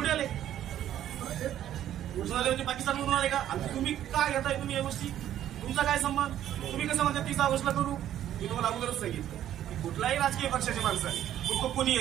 आले? कुठून आले म्हणजे पाकिस्तानमधून आले का? आणि तुम्ही काय घेताय तुम्ही या गोष्टी? तुमचा काय संबंध? तुम्ही कसं म्हणता 30 ऑगस्टला करू? मी तुम्हाला अगोदरच सांगितलं की कुठलाही राजकीय पक्षाचे माणसं आहे, मग तो कोणीही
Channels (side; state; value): left; quieter; 11.6 dB